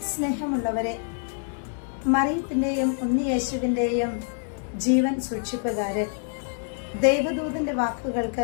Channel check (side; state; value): right; silent; 61 dB below the other